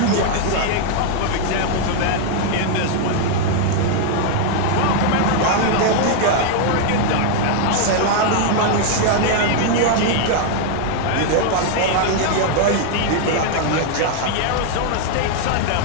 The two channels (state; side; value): different; both; correlation 0.00